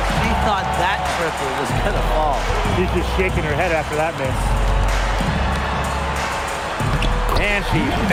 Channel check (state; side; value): identical; both; correlation 1.00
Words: she thought that triple was going to fall. She's just shaking her head after that miss. And she